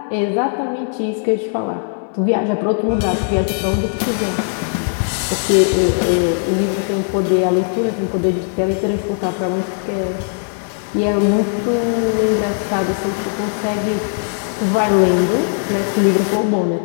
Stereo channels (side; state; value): right; silent; digital silence